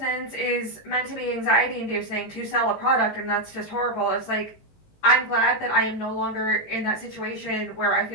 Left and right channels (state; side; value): late; right; 19 ms